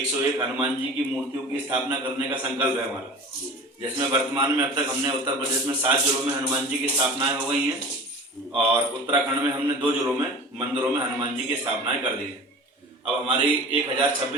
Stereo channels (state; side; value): normal; both; correlation 0.38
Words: हनुमान जी की मूर्तियों की स्थापना करने का संकल्प है हमारा, जिसमें वर्तमान में अब तक हमने उत्तर प्रदेश में 7 जिलों में हनुमान जी की स्थापनाएं हो गई हैं और उत्तराखंड में हमने 2 जिलों में मंदिरों में हनुमान जी की स्थापनाएं कर दी हैं। अब हमारी